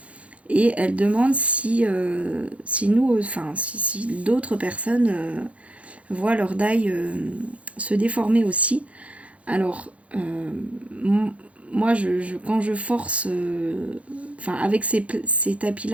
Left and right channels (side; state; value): left; late; 0.064 ms